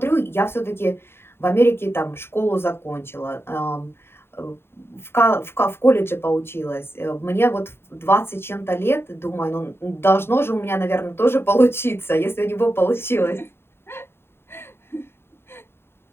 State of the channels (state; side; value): late; right; 0.11 ms